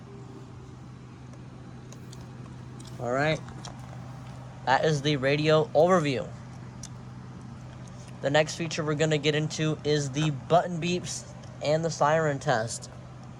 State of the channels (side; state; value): both; identical; correlation 1.00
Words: All right. That is the radio overview. The next feature we're going to get into is the button beeps and the siren test.